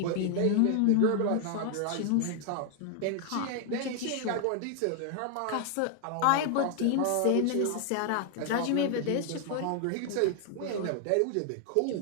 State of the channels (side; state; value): both; different; correlation 0.00